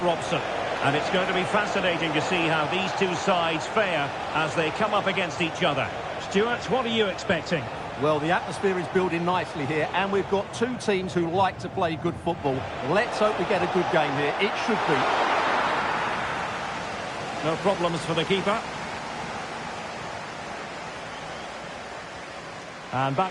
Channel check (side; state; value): both; identical; correlation 1.00